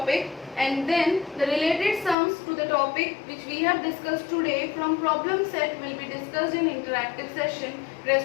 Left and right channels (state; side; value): drops out; right; at 2.1 s